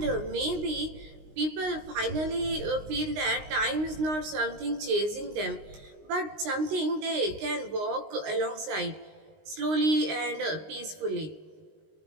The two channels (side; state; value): left; late; 19 ms